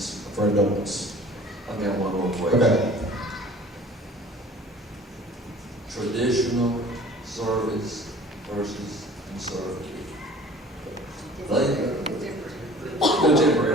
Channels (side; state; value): both; normal; correlation 0.48